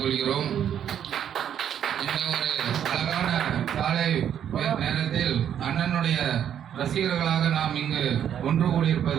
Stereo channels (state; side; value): quieter; left; 9.4 dB